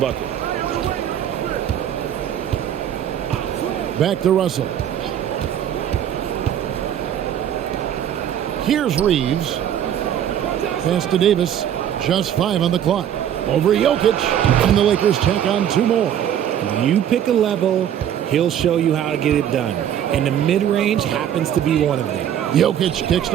Back to Russell. Here's Reeves. Pass to Davis. Just 5 on the clock. Over Jokic. And the Lakers tack on 2 more. You pick a level, he'll show you how to get it done. And the mid-range happens to be one of them. Jokic kicks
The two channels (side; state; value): left; quieter; 10.0 dB